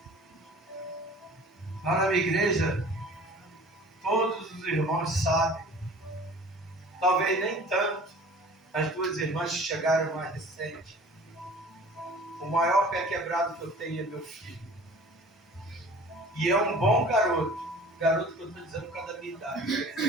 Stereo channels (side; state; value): both; normal; correlation 0.46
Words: lá na minha igreja, todos os irmãos sabem, talvez nem tanto, as duas irmãs que chegaram mais recente. O maior pé quebrado que eu tenho é meu filho. E é um bom garoto. Garoto que eu estou dizendo por causa da minha idade. Ele